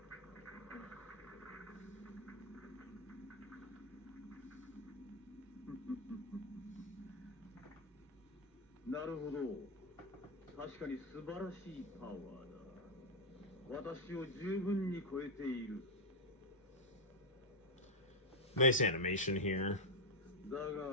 Nice animation here.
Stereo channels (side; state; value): both; normal; correlation 0.01